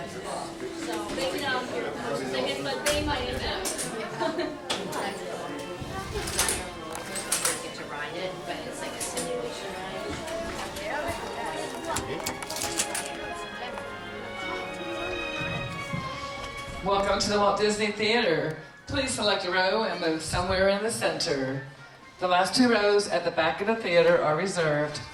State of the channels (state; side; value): identical; both; correlation 1.00